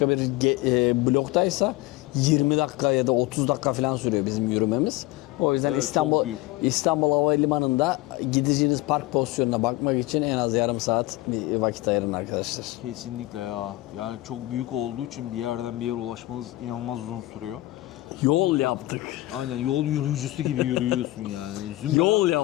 bir bloktaysa 20 dakika ya da 30 dakika falan sürüyor bizim yürümemiz. O yüzden Evet, çok büyük. İstanbul Havalimanı'nda gideceğiniz park pozisyonuna bakmak için en az yarım saat bir vakit ayırın arkadaşlar. Kesinlikle ya. Yani çok büyük olduğu için bir yerden bir yere ulaşmanız inanılmaz uzun sürüyor. Yol yaptık. Aynen, yol yürüyücüsü gibi yürüyorsun yani. Yol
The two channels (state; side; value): quieter; right; 18.5 dB